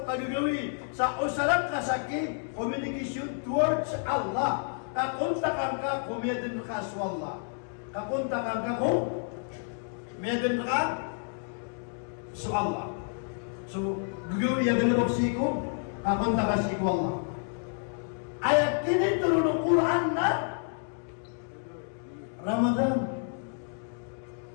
kagagawin sa usarang kasaki communication towards Allah. Kakuntakan ka kung medan ka sa Allah. Kakuntakan ka kung medan ka sa Allah. So, gagawin yung galabog siko, kakunta ka siko Allah. Ayat kini turun ng Quran na Ramadan.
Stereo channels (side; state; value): right; silent; 58 dB below the other